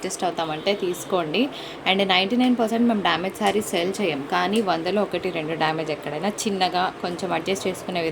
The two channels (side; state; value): both; identical; correlation 1.00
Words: అవుతామంటే తీసుకోండి. అండ్ 99% మేము డ్యామేజ్ శారీస్ సెల్ చేయం, కానీ 100లో 1-2 డ్యామేజ్ ఎక్కడైనా చిన్నగా కొంచెం అడ్జస్ట్ చేసుకునే